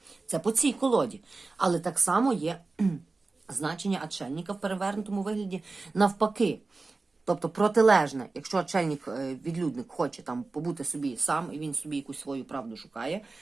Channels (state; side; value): quieter; left; 3.6 dB